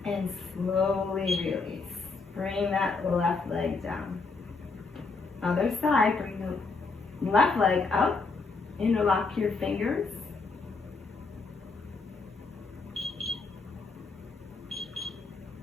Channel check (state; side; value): quieter; right; 4.2 dB